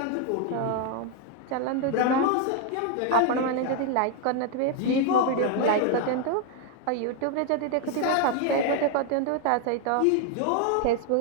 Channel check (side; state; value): both; different; correlation 0.00